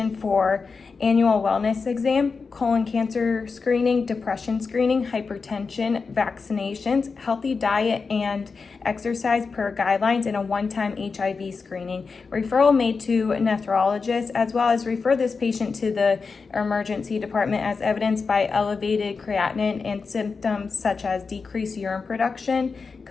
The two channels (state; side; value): quieter; right; 4.8 dB